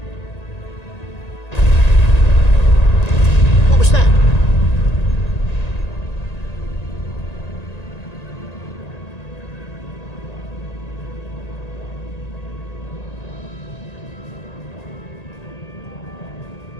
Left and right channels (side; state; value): right; late; 1.9 ms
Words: What was that?